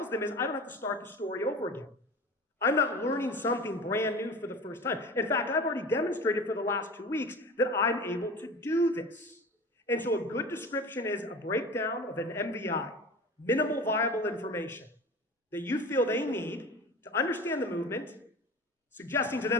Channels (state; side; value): normal; both; correlation 0.35